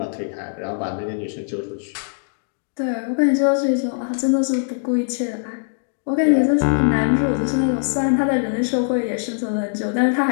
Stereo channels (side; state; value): right; silent; digital silence